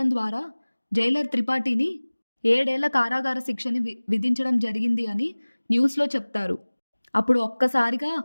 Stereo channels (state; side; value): inverted; both; correlation -1.00